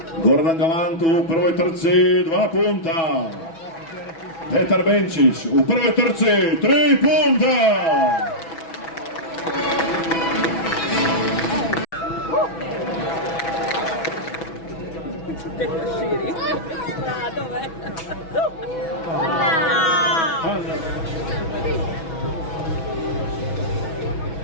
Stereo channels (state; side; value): late; right; 6.1 ms